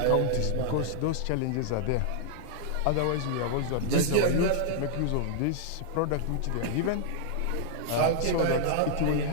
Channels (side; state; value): both; different; correlation -0.01